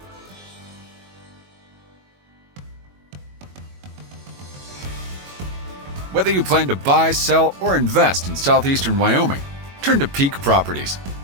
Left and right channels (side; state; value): left; late; 21 ms